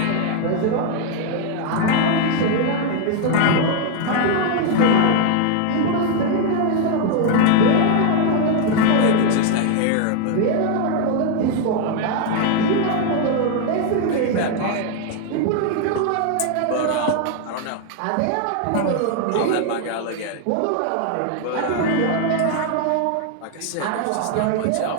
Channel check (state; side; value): different; both; correlation 0.01